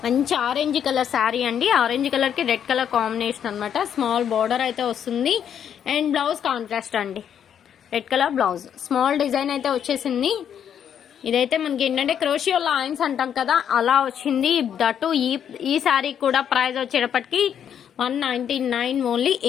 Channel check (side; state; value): right; quieter; 8.8 dB